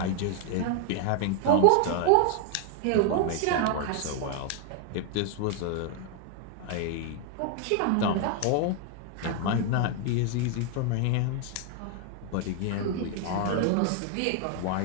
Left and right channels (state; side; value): different; both; correlation 0.00